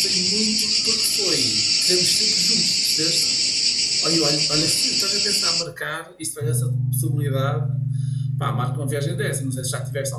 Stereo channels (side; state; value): both; identical; correlation 1.00